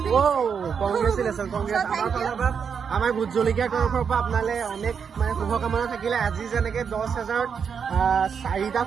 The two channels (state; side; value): quieter; left; 6.7 dB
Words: ও কংগ্ৰেচুলেশ্যন আমাৰ ভোট জলকীয়াৰ তৰফৰ পৰা আপোনালে অনেক মানে শুভকামনা থাকিলে। আজি যেনেকে 10,000 4টা